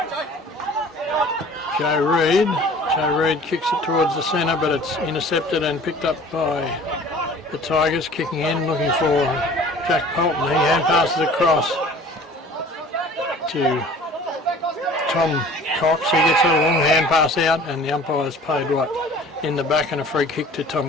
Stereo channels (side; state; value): both; normal; correlation 0.46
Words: Joe Reid. Joe Reid kicks it towards the centre, but it's intercepted and picked up by the Tigers. Kicking in, looking for Jack Polton. He hand passes across to Tom Cox. He gets a long hand pass out, and the umpire's paid what? In the back, and a free kick to